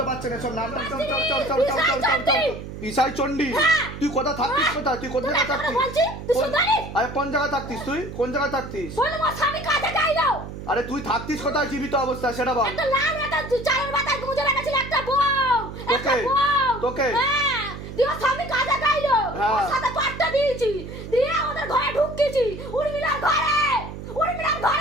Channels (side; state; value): right; noise; hum, 10 dB below the sound